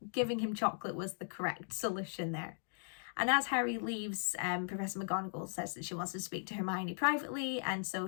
giving him chocolate was the correct solution there. And as Harry leaves, Professor McGonagall says that she wants to speak to Hermione privately, and so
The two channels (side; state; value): right; silent; digital silence